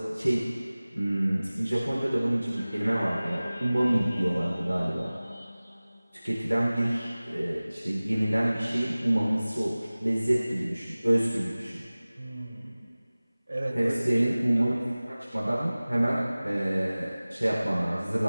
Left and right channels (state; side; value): inverted; both; correlation -0.99